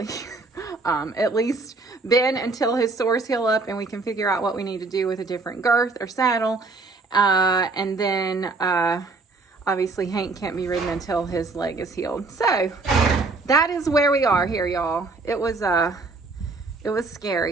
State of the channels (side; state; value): left; quieter; 3.6 dB